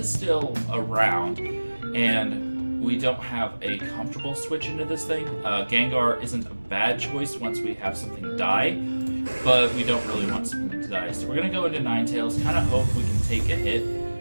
still around, and we don't have a comfortable switch into this thing. Gengar isn't a bad choice once we have something die, but we don't really want something to die. So we're going to go into Ninetales, kind of hope we can take a hit.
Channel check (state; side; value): inverted; both; correlation -1.00